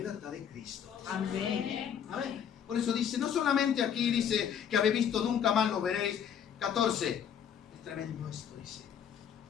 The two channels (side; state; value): right; quieter; 8.4 dB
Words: en Cristo. Amén. Amén. Por eso dice, no solamente aquí dice que habéis visto, nunca más lo veréis. 14. Es tremendo esto, dice.